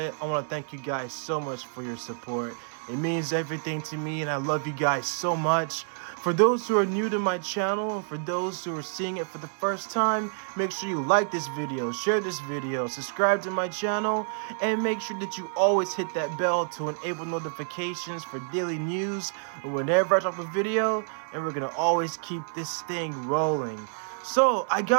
I want to thank you guys so much for your support. It means everything to me, and I love you guys so much. For those who are new to my channel, and for those who are seeing it for the first time, make sure you like this video, share this video, subscribe to my channel, and make sure that you always hit that bell to enable notifications for daily news whenever I drop a video, and we're gonna always keep this thing rolling. So, I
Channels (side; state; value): left; silent; digital silence